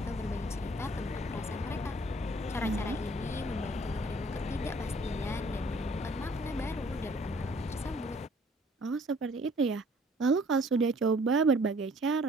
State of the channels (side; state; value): both; normal; correlation 0.57